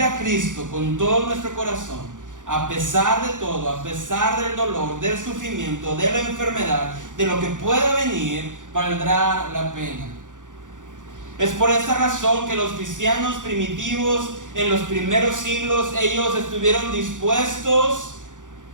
a Cristo con todo nuestro corazón, a pesar de todo, a pesar del dolor, del sufrimiento, de la enfermedad, de lo que pueda venir, valdrá la pena. Es por esta razón que los cristianos primitivos en los primeros siglos, ellos estuvieron dispuestos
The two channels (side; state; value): left; late; 0.87 ms